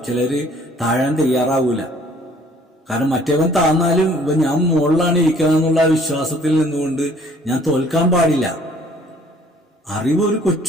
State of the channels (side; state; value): both; normal; correlation 0.57